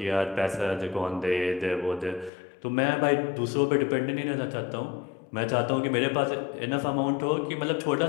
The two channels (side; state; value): right; drops out; at 2.3 s